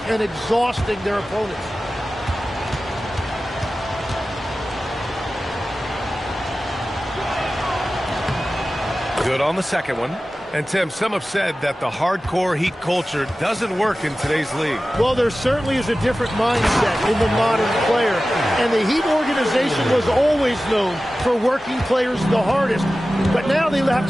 and exhausting their opponents. Good on the second one. And, Tim, some have said that the hardcore Heat culture doesn't work in today's league. Well, there certainly is a different mindset in the modern player. And the Heat organization was always known for working players the hardest. But now they have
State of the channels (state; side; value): normal; both; correlation 0.95